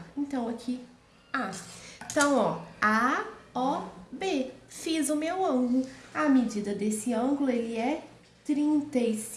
Então, aqui, A. Então, ó, A, O, B. Fiz o meu ângulo. A medida desse ângulo, ele é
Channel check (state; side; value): identical; both; correlation 1.00